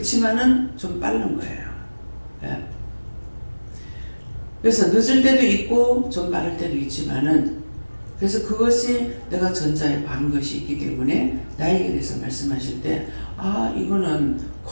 좀 빠른 거예요. 예. 그래서 늦을 때도 있고 좀 빠를 때도 있지만은 그래서 그것이 내가 전자에 반 것이 있기 때문에 나에게 대해서 말씀하실 때 이거는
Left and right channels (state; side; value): inverted; both; correlation -1.00